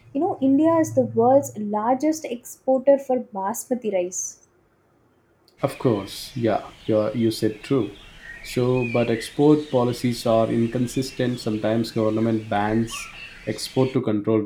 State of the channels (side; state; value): both; identical; correlation 1.00